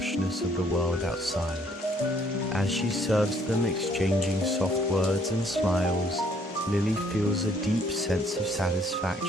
of the world outside. As she serves them, exchanging soft words and smiles, Lily feels a deep sense of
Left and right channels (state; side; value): normal; both; correlation 0.64